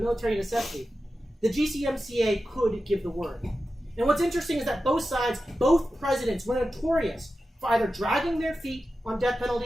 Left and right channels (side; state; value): both; normal; correlation 0.92